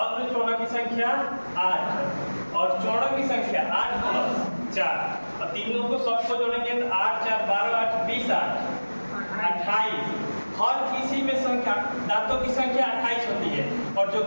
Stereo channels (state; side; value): inverted; both; correlation -1.00